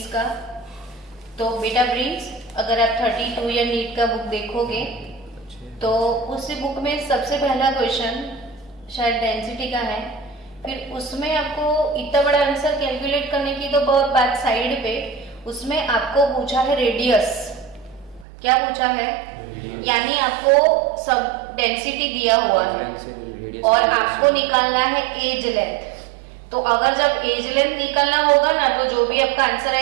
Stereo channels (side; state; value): left; drops out; at 18.2 s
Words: का। तो बेटा प्रिंस, अगर आप 32 या नीट का बुक देखोगे तो उसी बुक में सबसे पहला क्वेश्चन शायद डेंसिटी का है। फिर उसमें आपको इतना बड़ा आंसर कैलकुलेट करने की तो बहुत बात साइड पे, उसमें आपको पूछा है रेडियस। क्या पूछा है? यानी आपको सब डेंसिटी दिया हुआ है और आपको निकालना है एज लेंथ। तो अगर जब एज लेंथ निकालना होगा ना, तो जो भी आपका आंसर